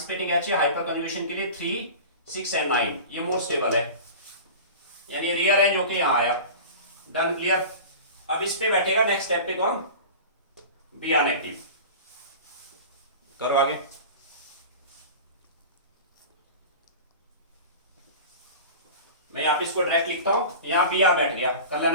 H है हाइपर कन्जुगेशन के लिए 3, 6 एंड 9, ये मोर स्टेबल है, यानी रीअरेंज होके यहाँ आया। Done, clear. अब इस पे बैठेगा नेक्स्ट स्टेप पे कौन? Br negative. करो आगे। मैं यहाँ पे इसको डायरेक्ट लिखता हूं, यहाँ Br बैठ गया,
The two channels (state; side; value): inverted; both; correlation -0.35